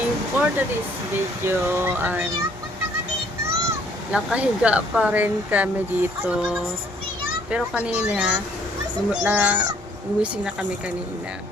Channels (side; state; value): both; normal; correlation 0.62